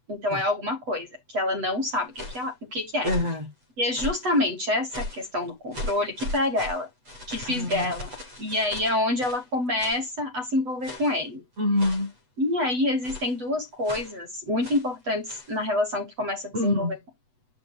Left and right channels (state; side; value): late; left; 8.0 ms